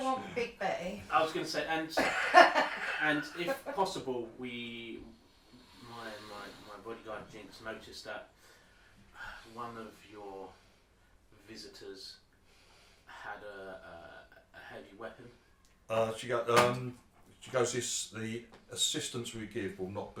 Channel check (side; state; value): both; identical; correlation 1.00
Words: want Big Betty. I was going to say, and if possible, my bodyguard Jinx noticed that one of your visitors had a heavy weapon. She goes, the assistance we give will not